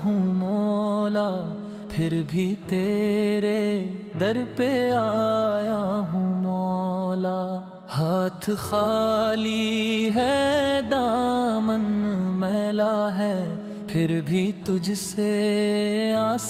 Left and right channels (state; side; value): identical; both; correlation 1.00